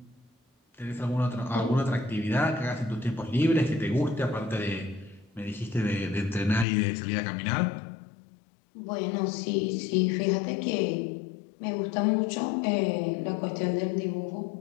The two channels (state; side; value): drops out; right; at 6.7 s